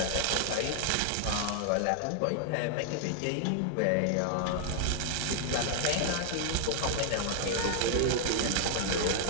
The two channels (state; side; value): different; both; correlation 0.00